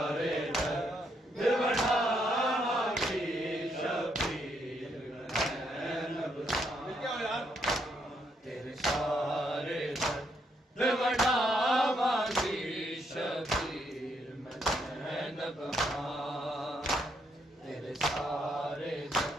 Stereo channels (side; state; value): both; normal; correlation 0.75